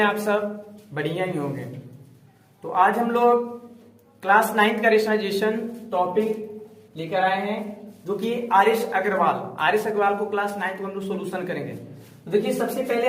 आप सब? बढ़िया ही होंगे। तो आज हम लोग क्लास 9 का रेशनलाइजेशन टॉपिक लेकर आए हैं, जो कि आरिश अग्रवाल को क्लास 9 को हम लोग सोल्यूशन करेंगे। तो देखिए, सबसे पहले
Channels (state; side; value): identical; both; correlation 1.00